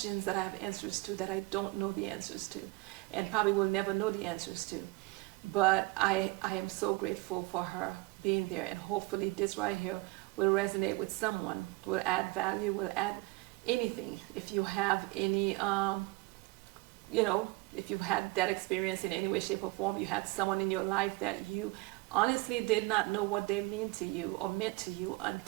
that I have answers to that I don't know the answers to, and probably will never know the answers to. But I am so grateful for her being there, and hopefully this right here will resonate with someone, will add value, will add anything. If you have any, if you've had that experience in any way, shape, or form, you had someone in your life that you honestly did not know what they mean to you or meant to you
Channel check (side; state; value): left; quieter; 23.1 dB